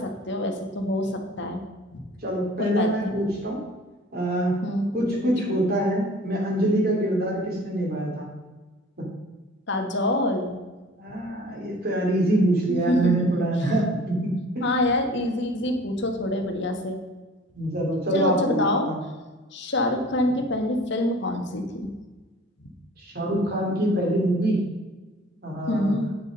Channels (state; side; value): normal; both; correlation 0.48